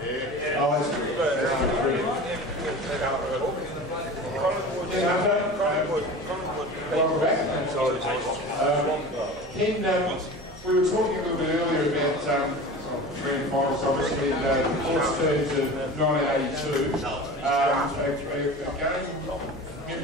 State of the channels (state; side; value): normal; both; correlation 0.34